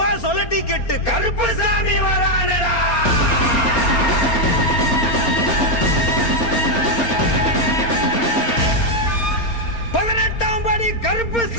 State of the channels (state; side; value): late; right; 4.3 ms